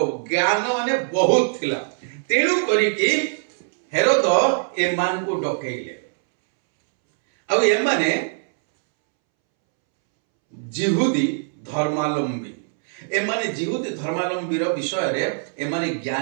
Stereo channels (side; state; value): left; silent; 64 dB below the other